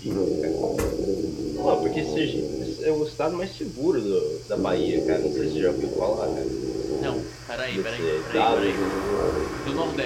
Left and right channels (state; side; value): identical; both; correlation 1.00